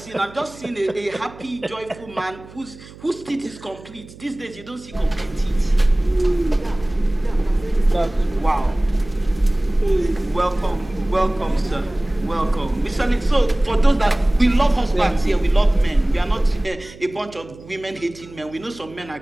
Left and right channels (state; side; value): noise; right; hum, 19 dB below the sound